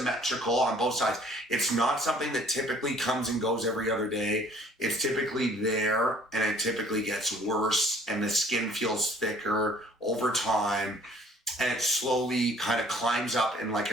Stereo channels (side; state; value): both; normal; correlation 0.56